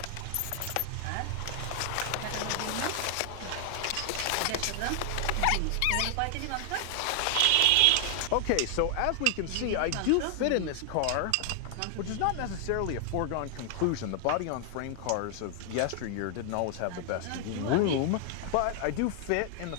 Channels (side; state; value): both; different; correlation 0.00